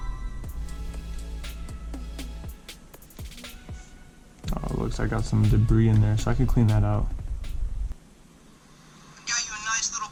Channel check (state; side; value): identical; both; correlation 1.00